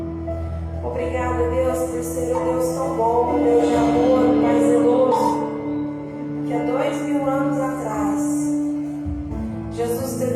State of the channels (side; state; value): both; identical; correlation 1.00